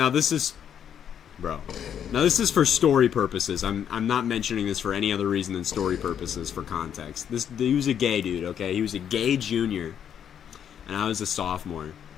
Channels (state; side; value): quieter; right; 8.9 dB